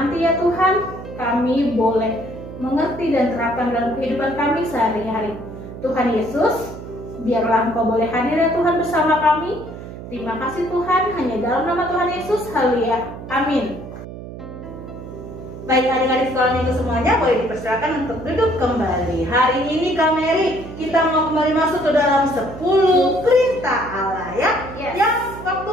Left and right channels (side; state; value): right; noise; hum, 12 dB below the sound